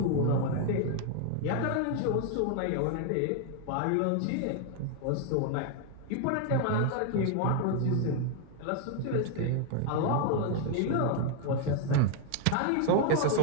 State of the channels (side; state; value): both; different; correlation 0.00